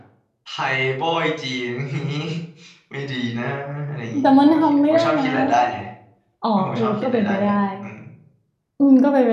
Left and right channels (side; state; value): both; identical; correlation 1.00